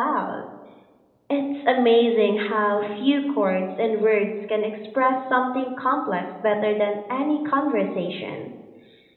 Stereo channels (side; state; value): both; identical; correlation 1.00